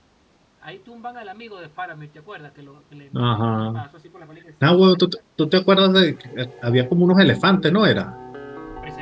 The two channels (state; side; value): identical; both; correlation 1.00